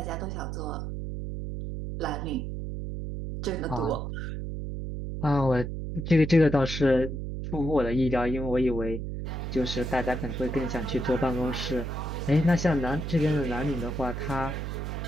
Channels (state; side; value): noise; right; hum, 5 dB below the sound